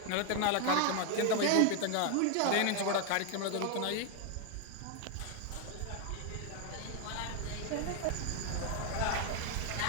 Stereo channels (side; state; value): both; different; correlation 0.01